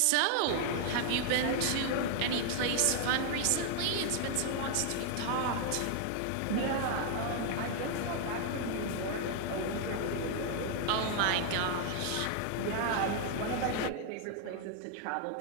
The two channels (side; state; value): both; different; correlation 0.00